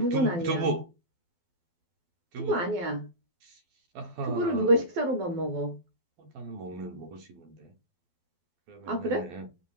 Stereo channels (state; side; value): late; left; 12 ms